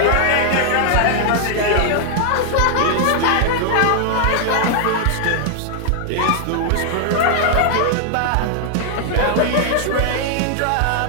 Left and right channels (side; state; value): both; different; correlation 0.00